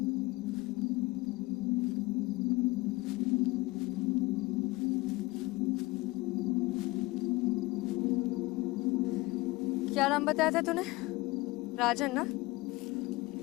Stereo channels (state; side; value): quieter; right; 21.3 dB